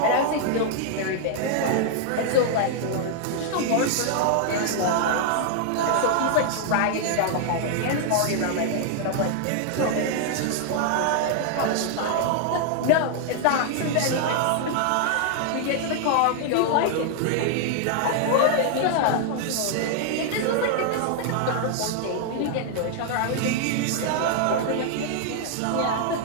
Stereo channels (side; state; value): both; different; correlation -0.01